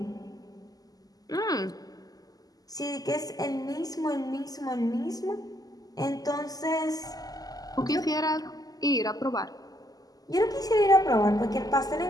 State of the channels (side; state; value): right; late; 0.18 ms